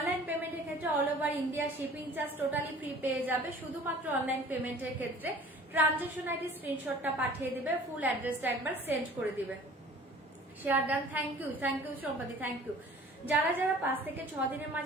পেমেন্টের ক্ষেত্রে all over India shipping charge totally free পেয়ে যাবে, শুধুমাত্র অনলাইন পেমেন্টের ক্ষেত্রে ট্রানজাকশন আইডি স্ক্রিনশটটা পাঠিয়ে দিবে, ফুল অ্যাড্রেসটা একবার সেন্ড করে দিবে। শেয়ার ডান, থ্যাংক ইউ সম্পাদি, থ্যাংক ইউ। যারা যারা 5 থেকে 6 দিনের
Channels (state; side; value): normal; both; correlation 0.48